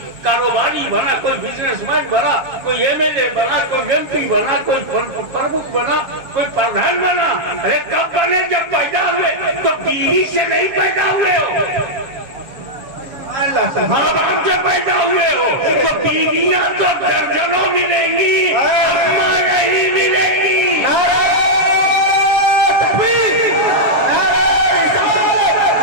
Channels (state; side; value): late; left; 7.1 ms